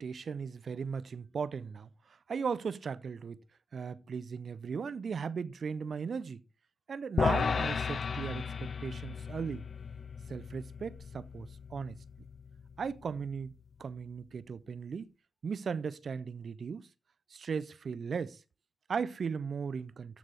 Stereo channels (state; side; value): normal; both; correlation 0.83